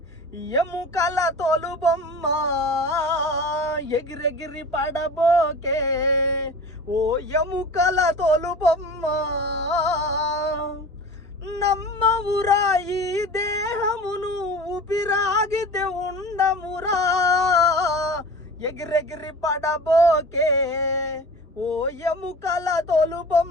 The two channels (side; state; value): both; normal; correlation 0.37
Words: ఎముకల తోలుబొమ్మ, ఎగిరెగిరి పడబోకే ఓ ఎముకల తోలుబొమ్మ. నమ్మవురా ఈ దేహమును ఊపిరాగితే ఉండమురా, ఎగిరెగిరి పడబోకే ఓ ఎముకల